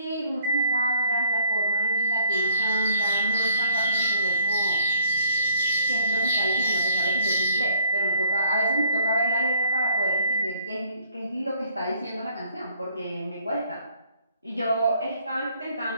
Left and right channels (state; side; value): inverted; both; correlation -0.60